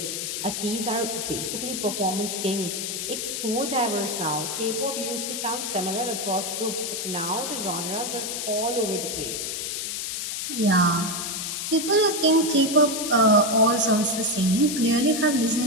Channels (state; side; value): noise; left; hiss, 3 dB below the sound